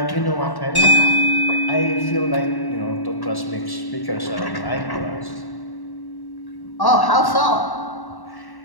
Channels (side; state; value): right; late; 1.1 ms